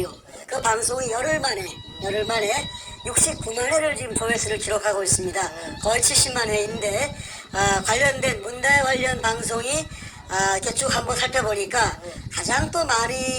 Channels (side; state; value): both; identical; correlation 1.00